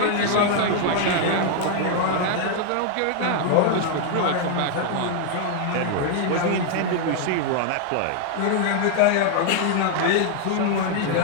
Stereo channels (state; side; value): different; both; correlation 0.00